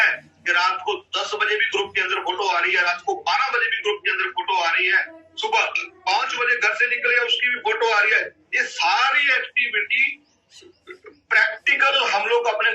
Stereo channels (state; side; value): identical; both; correlation 1.00